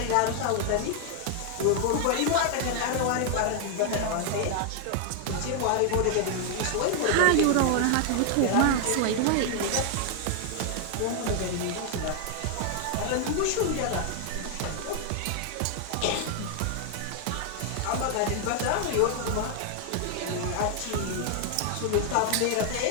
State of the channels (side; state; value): both; different; correlation 0.00